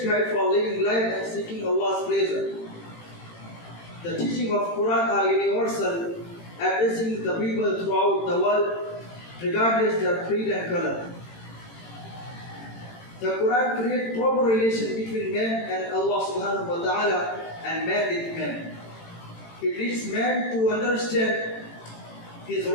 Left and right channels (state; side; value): late; right; 18 ms